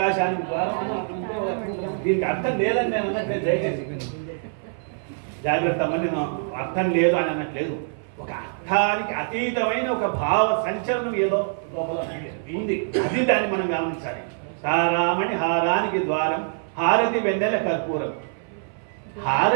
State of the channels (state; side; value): silent; left; 58 dB below the other